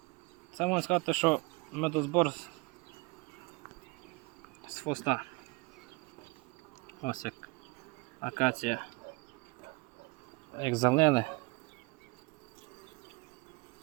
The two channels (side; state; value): left; quieter; 26.2 dB